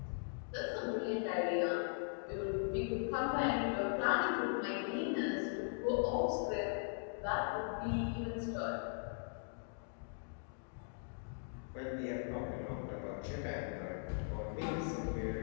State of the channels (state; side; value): silent; right; digital silence